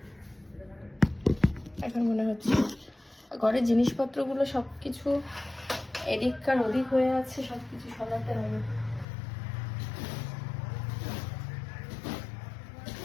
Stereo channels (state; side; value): drops out; right; at 9.1 s